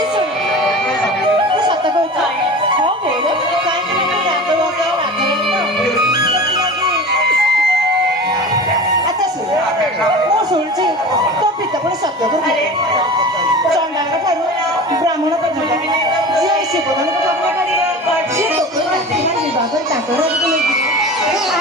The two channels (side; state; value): both; normal; correlation 0.34